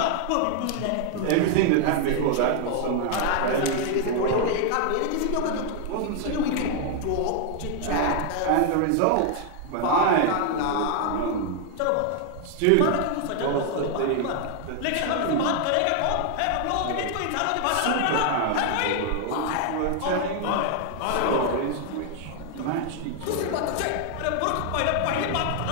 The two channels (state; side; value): different; both; correlation 0.00